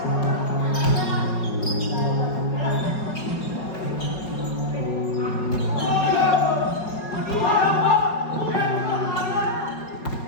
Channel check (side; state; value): right; late; 4.8 ms